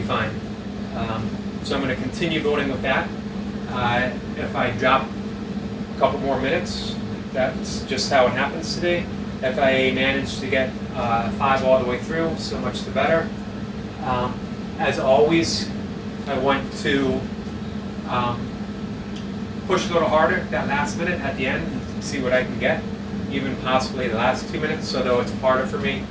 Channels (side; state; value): both; identical; correlation 1.00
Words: fine. So I'm going to continue building with that. If I drop a couple more minutes, that's just how it happens today. If I manage to get 5 all the way through, so much the better. As always, I want to push a little harder that last minute at the end and see what I can get. Even possibly the last 2 minutes, although it's harder for me